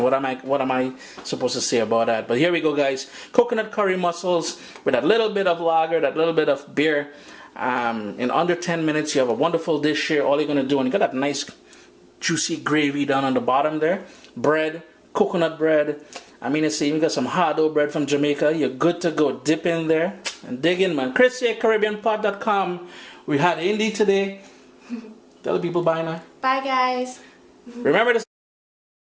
What am I supposed to say about that? But here we go, guys. Coconut curry mussels with a little bit of lager, that little bit of beer. In under 10 minutes, you have a wonderful dish here. All you're gonna do, and you got that nice juicy gravy down on the bottom there. Bread, coconut bread. I mean, it's even got some hardo bread from Jamaica. You're good to go. Dip in there and dig in, man. ChrisCaribbeanPot.com. We had Indy today. Tell the people bye now. Bye, guys. Remember to...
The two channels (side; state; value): both; identical; correlation 1.00